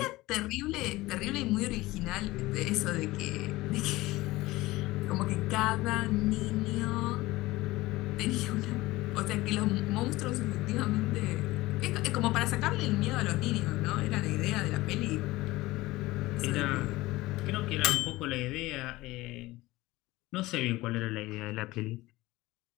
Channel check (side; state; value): right; quieter; 19.1 dB